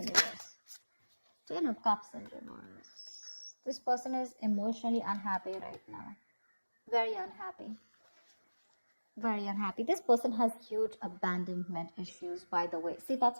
reverse? Ten of Cups in reverse. This person is emotionally unhappy right now. Very unhappy. Very unhappy. This person has huge abandonment issues, by the way. See,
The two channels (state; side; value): inverted; both; correlation -1.00